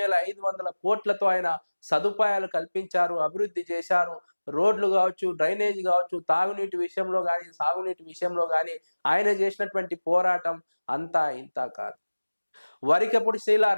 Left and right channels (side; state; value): both; inverted; correlation -1.00